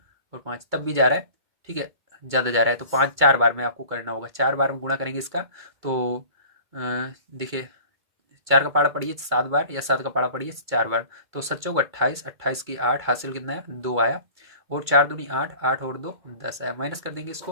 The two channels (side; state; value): left; late; 2.3 ms